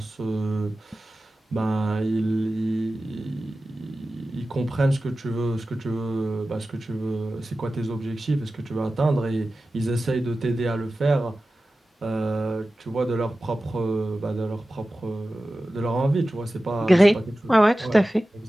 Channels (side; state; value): both; normal; correlation 0.95